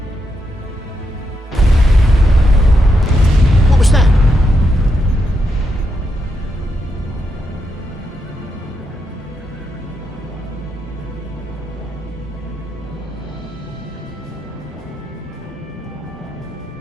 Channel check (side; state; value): both; normal; correlation 0.82